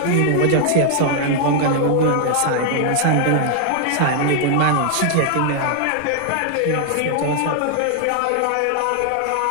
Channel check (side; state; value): both; different; correlation 0.00